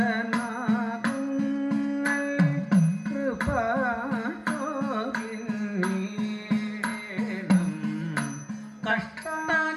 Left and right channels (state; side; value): identical; both; correlation 1.00